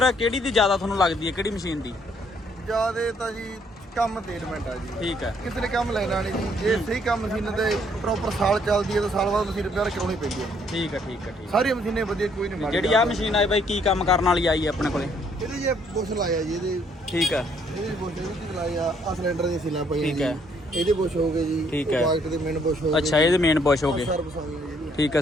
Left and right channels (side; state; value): both; normal; correlation 0.67